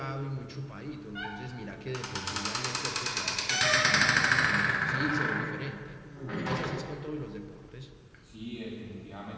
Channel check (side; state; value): both; identical; correlation 1.00